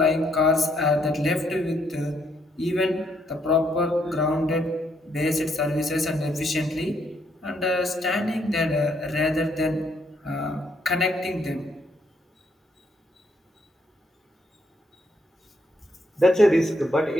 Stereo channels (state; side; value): normal; both; correlation 0.72